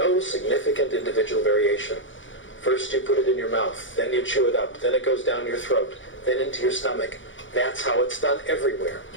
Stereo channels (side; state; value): right; late; 0.56 ms